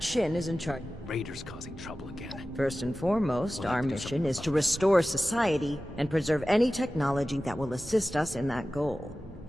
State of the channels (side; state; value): both; normal; correlation 0.95